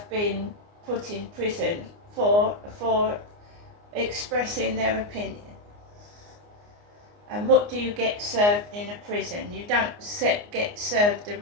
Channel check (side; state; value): left; late; 29 ms